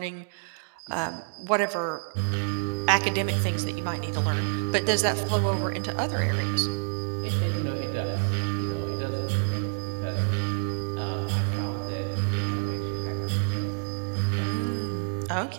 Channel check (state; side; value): silent; left; digital silence